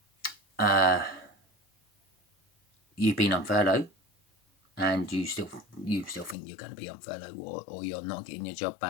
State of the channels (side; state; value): right; drops out; at 6.4 s